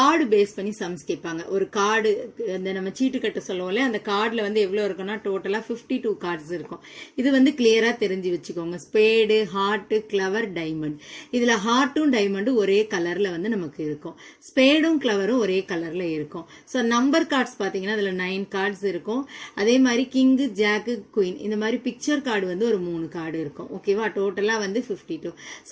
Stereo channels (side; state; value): both; identical; correlation 1.00